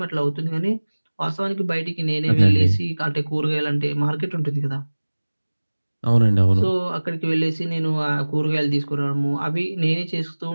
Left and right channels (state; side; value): inverted; both; correlation -1.00